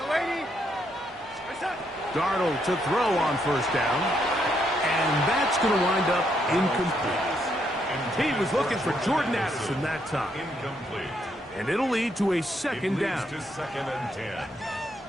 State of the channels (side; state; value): both; normal; correlation 0.76